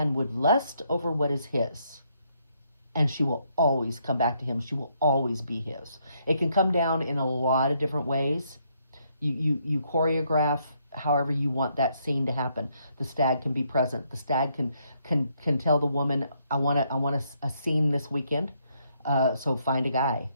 would lust over what is his, and she will always come back to him. She will always be his. It can come down in a lot of different ways. You choreograph however you want that scene to happen. The stag can be present. The stag can tell the woman, I want a scene this weekend. So find a guy,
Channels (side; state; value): both; inverted; correlation -0.73